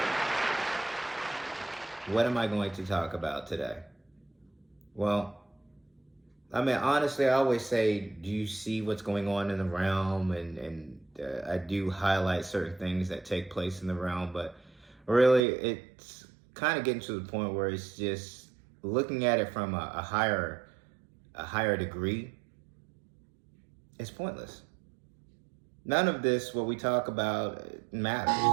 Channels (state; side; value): drops out; left; at 15.4 s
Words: what am I going to talk about today? Well, honestly, I always say, do you see what's going on in the realm? And I do highlight certain things that take place in the realm, but really, it's kind of getting to the point where it's just looking at it from a higher degree. It's pointless. None of this, what we talk about, matters.